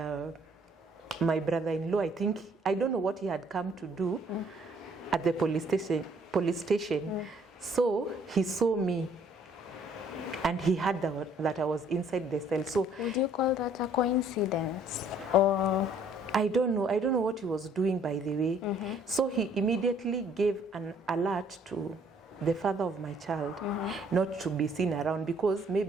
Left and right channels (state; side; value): normal; both; correlation 0.61